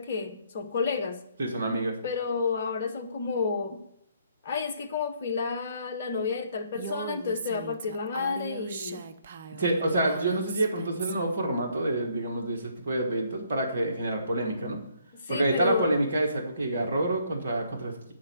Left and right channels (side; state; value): both; inverted; correlation -0.67